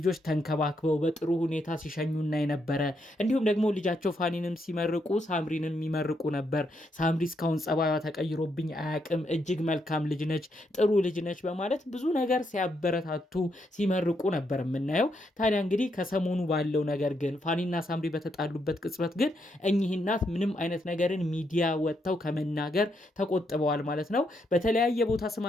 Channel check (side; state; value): both; normal; correlation 0.78